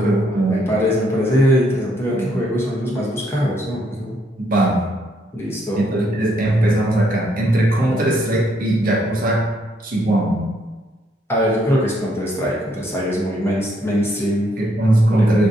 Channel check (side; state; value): both; normal; correlation 0.72